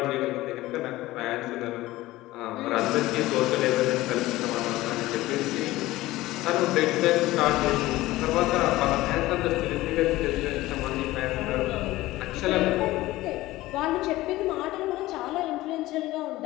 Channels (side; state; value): right; quieter; 17.5 dB